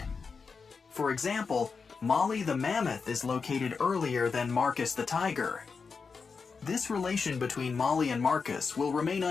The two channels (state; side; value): quieter; right; 5.1 dB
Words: For example, Molly the mammoth is located earlier than Marcus the tiger. This relation between Molly and Marcus will remain